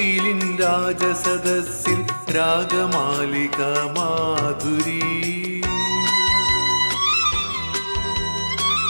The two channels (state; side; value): inverted; both; correlation -1.00